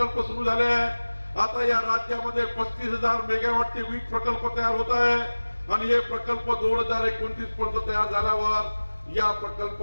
सुरू झाले आहे. आता या राज्यामध्ये 35,000 मेगावॉटचे वीज प्रकल्प तयार होत आहे आणि हे प्रकल्प 2029 पर्यंत तयार झाल्यावर या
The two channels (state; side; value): inverted; both; correlation -1.00